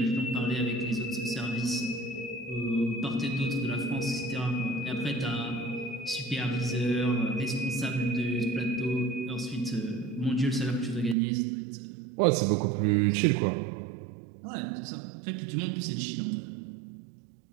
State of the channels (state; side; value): drops out; left; at 11.2 s